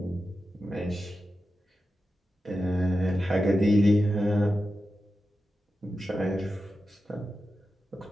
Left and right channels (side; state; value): both; normal; correlation 0.91